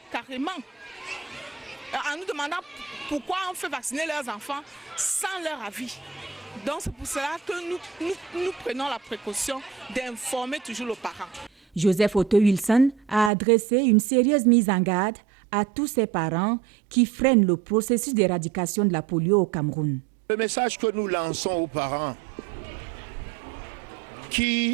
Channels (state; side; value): drops out; left; at 13.3 s